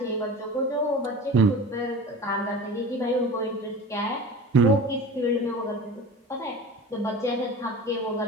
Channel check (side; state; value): both; normal; correlation 0.35